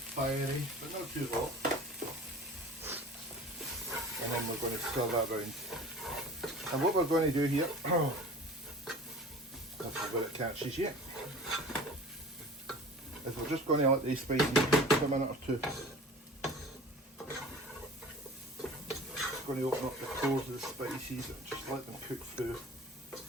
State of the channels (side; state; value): both; normal; correlation 0.41